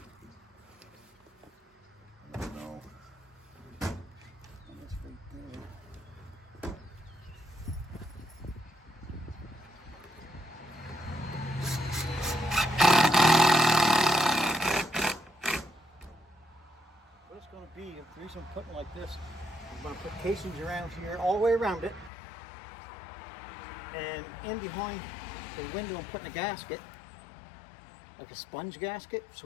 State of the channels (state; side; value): drops out; right; at 22.1 s